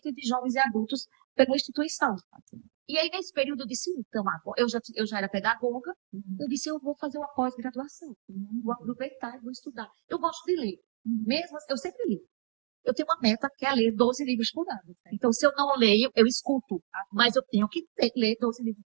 de jovens e adultos pela instituição. E aí, nesse período, eu disse, então, eu já era pedagoga, eu disse, eu vou fazer uma pós-graduação, vou aproveitar e vou estudar. Eu gosto de ler, mesmo, eu sempre li. Eu tenho uma meta que é ler 12 livros por ano. Então, se eu não leio, eu escuto, mas eu tenho que ler 12 livros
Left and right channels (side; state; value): left; silent; digital silence